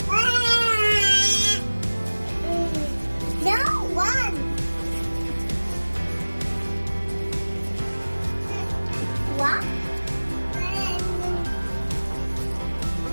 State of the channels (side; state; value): both; inverted; correlation -1.00